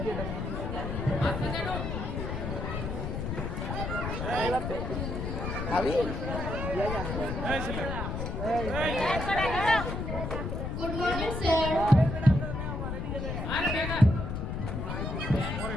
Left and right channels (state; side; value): noise; left; rumble, 3 dB below the sound